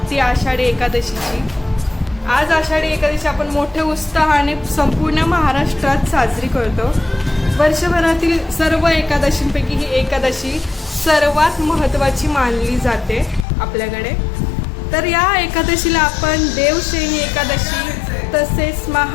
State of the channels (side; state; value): right; drops out; at 13.5 s